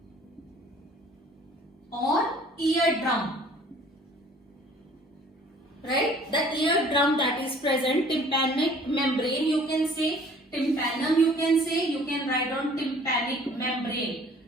or eardrum. Right? The eardrum that is present, tympanic membrane, you can say tympanum, you can say, you can write on tympanic membrane.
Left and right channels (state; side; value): normal; both; correlation 0.53